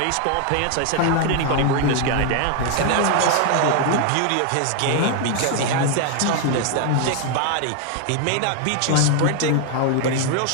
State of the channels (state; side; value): different; both; correlation 0.01